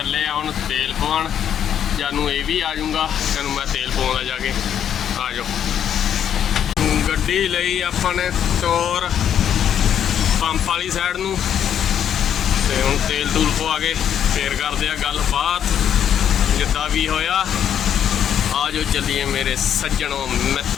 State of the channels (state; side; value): quieter; right; 9.3 dB